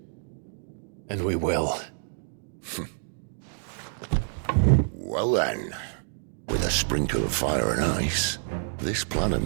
And we will. Well then, with a sprinkle of fire and ice, this plan of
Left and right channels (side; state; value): left; silent; digital silence